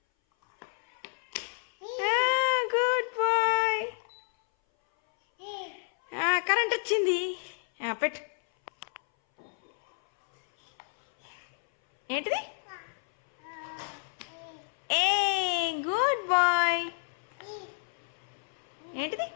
Good boy. Current వచ్చింది. పెట్టు. ఏంటిది? A good boy. ఏంటిది?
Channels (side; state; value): right; silent; 58 dB below the other